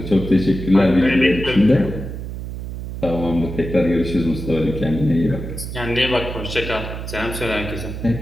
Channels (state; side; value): noise; right; hum, 7 dB below the sound